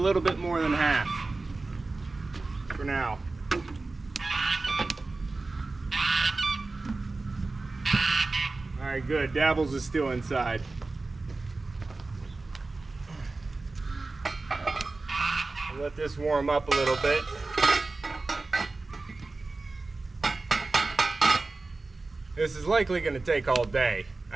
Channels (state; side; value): quieter; left; 3.5 dB